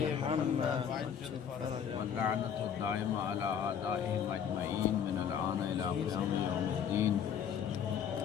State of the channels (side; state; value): right; quieter; 8.1 dB